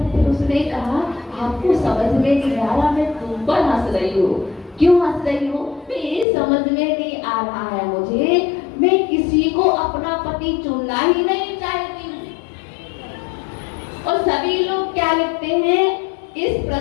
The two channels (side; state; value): right; drops out; at 6.2 s